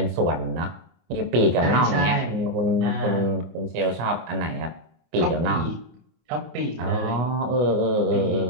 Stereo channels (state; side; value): late; left; 24 ms